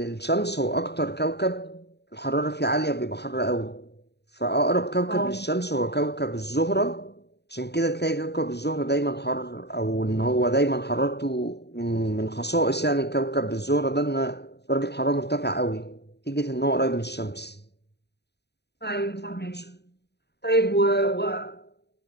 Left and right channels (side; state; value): right; late; 0.49 ms